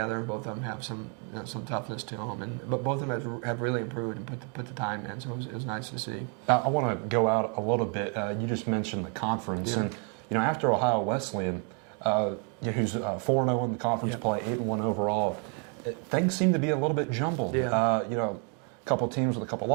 and both of them have some toughness to them. But both of them have really improved and put the time in. So it was nice to see. I want to go out a little bit. You just mentioned the conference, and after Ohio Wesleyan, who's 4-0 in the conference play, 8-1 overall, things seem to be a little bit jumbled. A couple teams with a couple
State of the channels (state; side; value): quieter; left; 38.7 dB